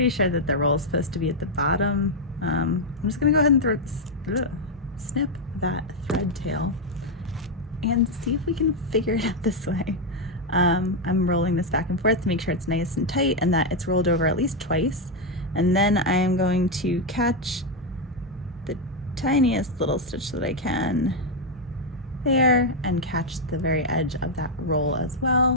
sure that the roll is supposed to be at the bottom. I'm just gonna go ahead and snip that thread tail and see if we can figure it out this way. I'm rolling this back and forth to make sure it's nice and tight and that it's rolled over at least twice. And then I am going to catch the tiniest little stitch that I can there and catch the very edge of that roll as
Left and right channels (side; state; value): both; normal; correlation 0.01